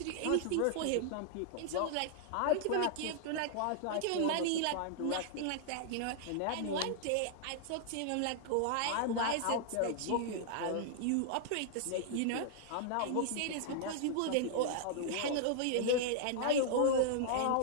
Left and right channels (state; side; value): different; both; correlation -0.01